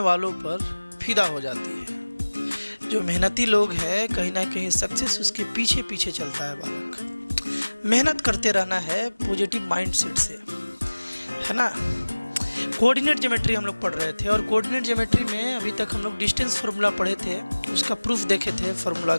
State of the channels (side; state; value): both; inverted; correlation -1.00